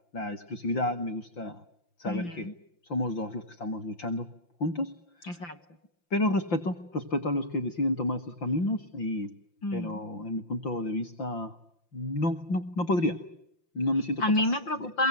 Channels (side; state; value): right; late; 5.8 ms